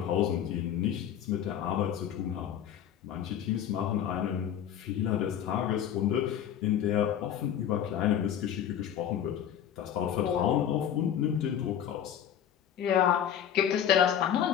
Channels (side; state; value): right; quieter; 9.6 dB